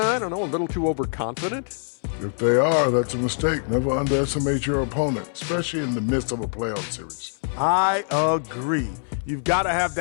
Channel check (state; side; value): silent; right; 61 dB below the other